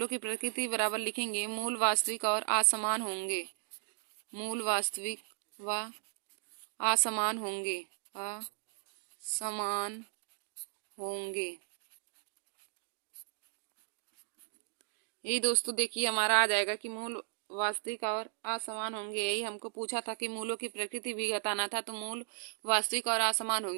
की प्रकृति बराबर लिखेंगे मूल वास्तविक और असमान होंगे। मूल वास्तविक व असमान होंगे। असमान होंगे। यही दोस्तों देखिए हमारा आ जाएगा कि मूल वास्तविक और असमान होंगे। यही हमको पूछा था कि मूलों की प्रकृति भी बताना था, तो मूल वास्तविक और असमान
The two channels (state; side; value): silent; left; digital silence